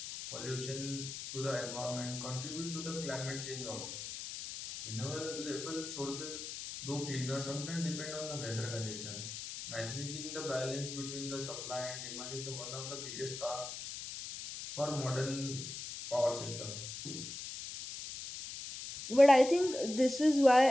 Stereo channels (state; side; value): noise; left; hiss, 8 dB below the sound